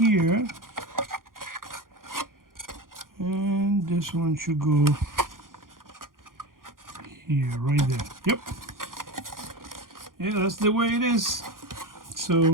And think this one should go here, right there. Yep. Yeah, that's the way it is.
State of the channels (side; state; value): left; late; 0.90 ms